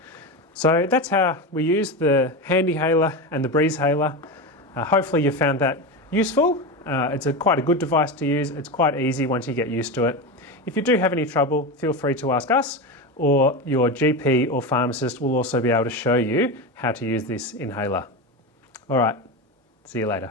So that's how we use the Handihaler and the Breezhaler. Hopefully you found that useful. It's quite a good device to use. It's quite easy once you get used to it. If you do have any trouble, feel free to ask us, or your GP or pharmacist will also be able to show you how to use this inhaler. All right, see you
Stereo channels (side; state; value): both; normal; correlation 0.19